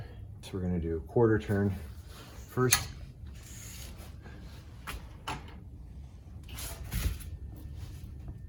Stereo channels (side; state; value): both; identical; correlation 1.00